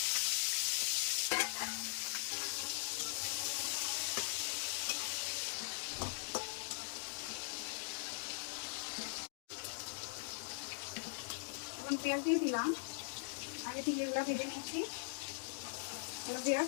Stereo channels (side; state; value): right; silent; digital silence